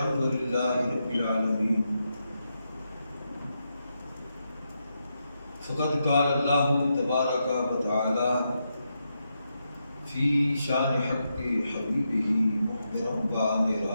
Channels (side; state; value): both; inverted; correlation -0.84